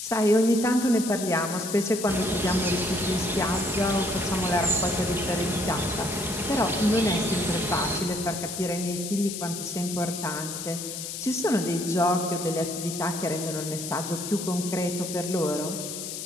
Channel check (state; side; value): noise; left; hiss, 7 dB below the sound